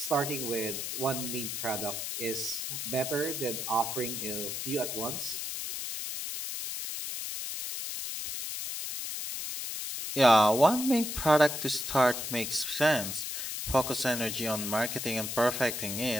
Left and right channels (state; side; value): noise; left; hiss, 4 dB below the sound